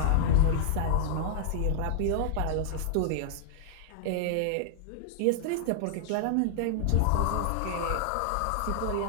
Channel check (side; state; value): both; different; correlation -0.01